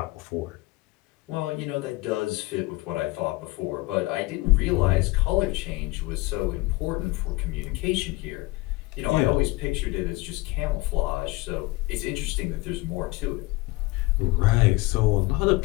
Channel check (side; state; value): right; quieter; 21.5 dB